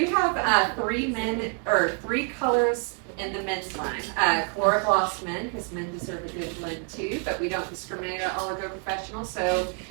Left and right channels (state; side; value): quieter; left; 39.6 dB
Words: have 3 colors in the men's line. Calura Gloss men, because men deserve a good blend too, but we don't discriminate at Oligo Professional. So